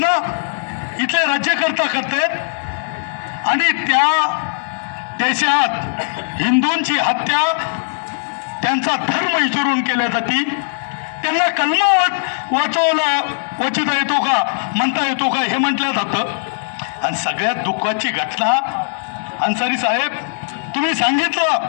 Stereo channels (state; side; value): silent; right; digital silence